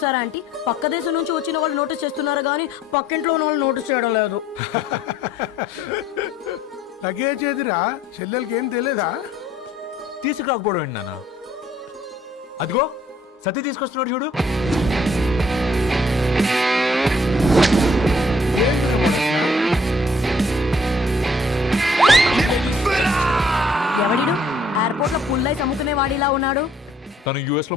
ఆంటీ, పక్క దేశం నుంచి వచ్చిన వాళ్ళు నోటీస్ చేస్తున్నారు కానీ పక్కింట్లో ఉన్న వాళ్ళు నోటీస్ చేయడం లేదు. లగేజ్ ఏదిరా? చెల్లెలకి ఏం తెలియదా? తీసుకురాకపోవడం ఏంటి నాన్న? అదిగో సతీ తీసుకొస్తున్నాడు చూడు. ఎవడిడు ఎయిర్పోర్ట్ లో పుల్లై అమ్ముకునే వాడిలా ఉన్నాడు? తను యుఎస్ లో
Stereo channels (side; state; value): both; normal; correlation 0.62